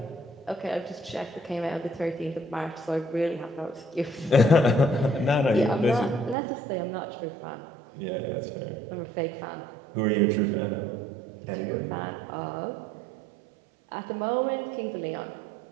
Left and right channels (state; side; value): drops out; left; at 6.4 s